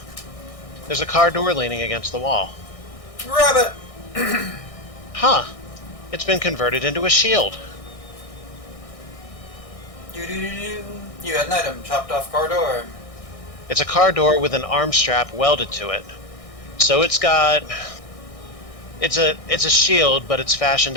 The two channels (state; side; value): late; right; 1.6 ms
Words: There's a car door leaning against the wall. Grab it! Huh. It's been converted into a shield. Do-do-do-do. You had an item. Chopped off car door. It's a car door with an arm strap welded to it. So it's got... It's a shield, but it's